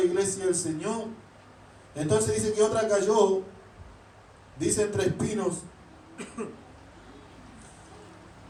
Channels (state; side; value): identical; both; correlation 1.00